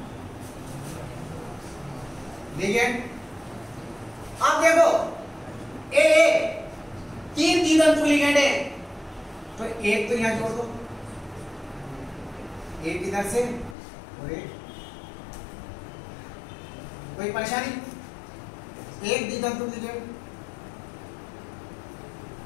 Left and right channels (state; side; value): drops out; right; at 13.8 s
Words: लिगेंड। अब देखो AA 3 द्वितंतुक लिगेंड है, तो एक तो यहां जोड़ दो, एक इधर से और एक। कोई परेशानी? एक द्वितंतुक लिगेंड,